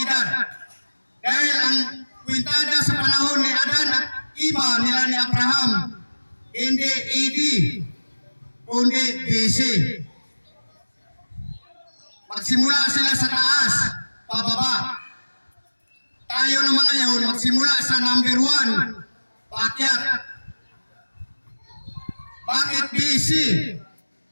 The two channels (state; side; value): inverted; both; correlation -1.00